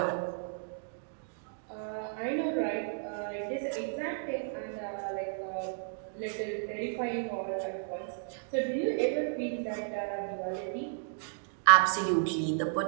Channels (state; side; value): silent; left; digital silence